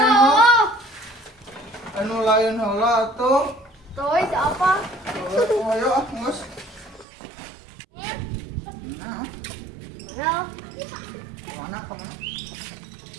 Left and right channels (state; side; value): drops out; left; at 7.1 s